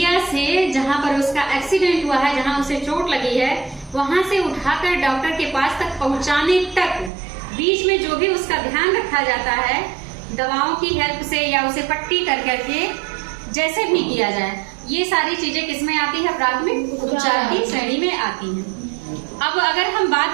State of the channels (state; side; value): drops out; left; at 7.1 s